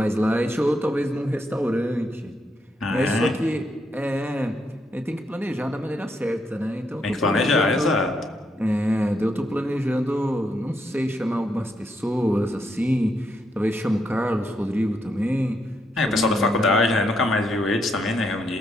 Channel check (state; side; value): normal; both; correlation 0.78